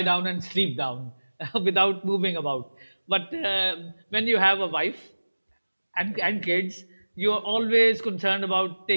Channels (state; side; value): inverted; both; correlation -1.00